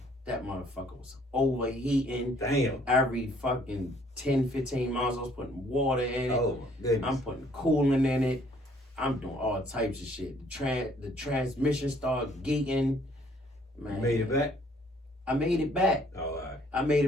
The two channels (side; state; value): both; normal; correlation 0.62